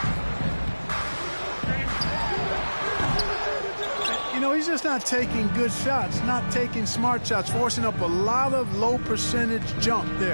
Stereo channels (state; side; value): inverted; both; correlation -1.00